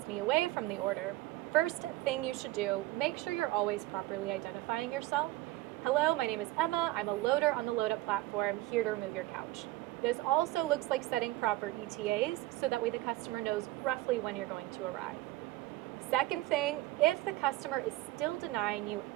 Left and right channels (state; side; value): quieter; left; 17.6 dB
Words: me away from the order? First thing you should do, make sure you're always properly identifying yourself. Hello, my name is Emma. I'm a loader on the LoadUp platform, here to remove your couch. This also looks like setting proper ETAs, so that way the customer knows roughly when you're going to arrive. Second thing, if the customer is still denying you